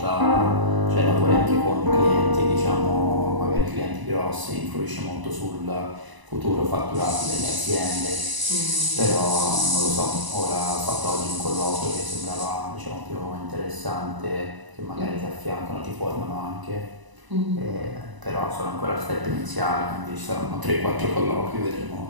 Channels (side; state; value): left; late; 1.0 ms